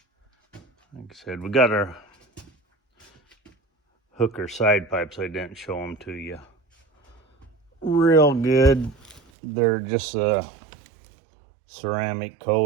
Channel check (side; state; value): left; drops out; at 9.2 s